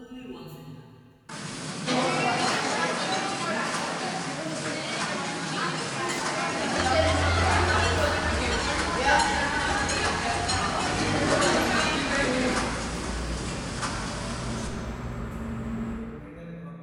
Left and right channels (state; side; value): identical; both; correlation 1.00